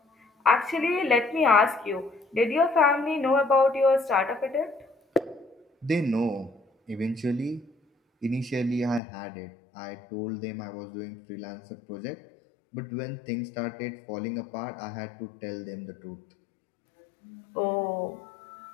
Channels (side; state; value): right; drops out; at 9.0 s